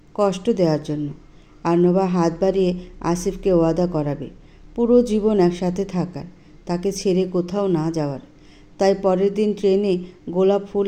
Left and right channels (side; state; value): both; identical; correlation 1.00